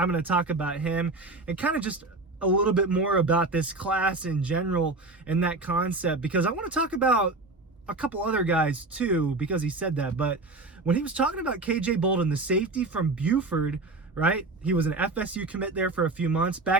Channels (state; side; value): quieter; left; 3.2 dB